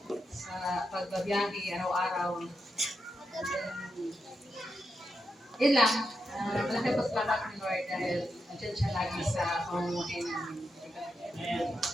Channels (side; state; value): both; normal; correlation 0.86